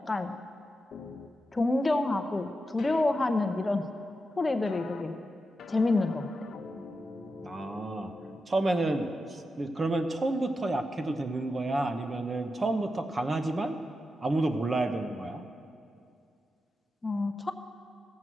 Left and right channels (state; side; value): normal; both; correlation 0.89